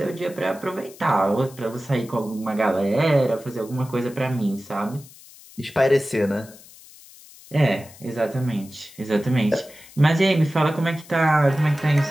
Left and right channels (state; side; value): noise; left; hiss, 21 dB below the sound